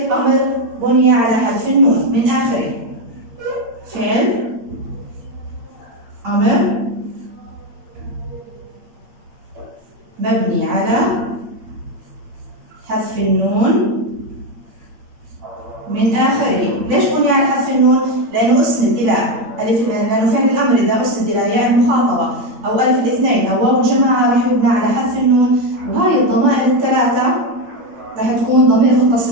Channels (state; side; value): late; left; 8.7 ms